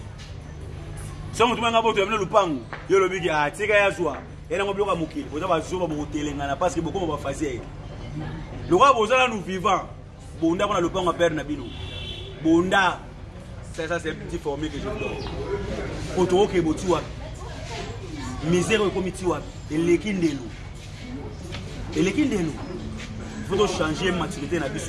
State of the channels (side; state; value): both; identical; correlation 1.00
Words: Si on a un lupango, il y a le big à Tika Yazwa, et on a un bloc à Mouki. On a un zoom à Moutelé, parce que beaucoup vont faire. Le roi Bozala nous vivants. Bunda, on a le pan à perdre Nabino. Bunda, ça c'est un petit formé que je donne. Autour qui est Botua. misère au comité et l'équindelo. Et l'équindelo. Il faut changer maturité na